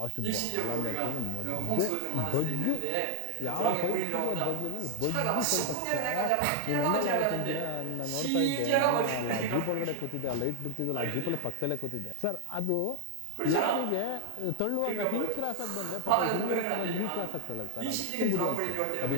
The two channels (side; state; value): both; different; correlation 0.01